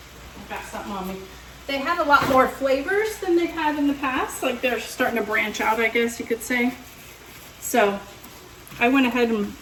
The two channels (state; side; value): identical; both; correlation 1.00